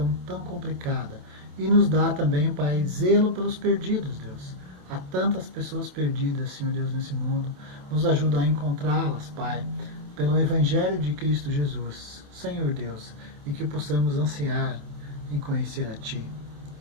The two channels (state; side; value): late; left; 27 ms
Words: tão complicada. E nos dá também, Pai, zelo pelos perdidos, Deus. Há tantas pessoas perdidas, Senhor Deus, nesse mundo. Nos ajuda a encontrá-las, Pai, pelo Evangelho de Cristo Jesus, Senhor Deus, e que possamos ansiar em conhecer a Ti,